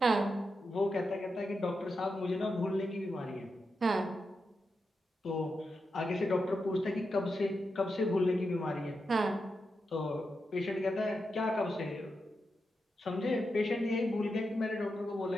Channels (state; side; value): normal; both; correlation 0.87